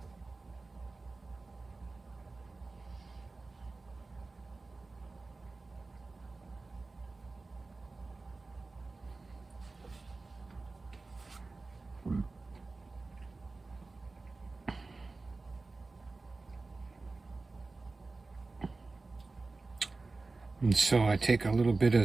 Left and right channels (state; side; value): quieter; left; 3.6 dB